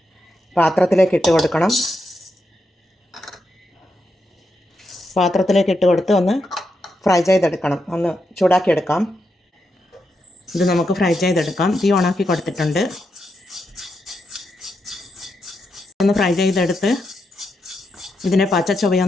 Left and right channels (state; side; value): normal; both; correlation 0.84